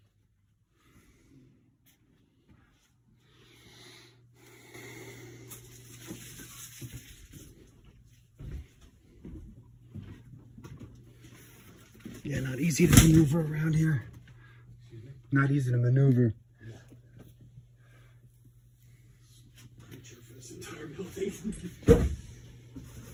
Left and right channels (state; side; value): identical; both; correlation 1.00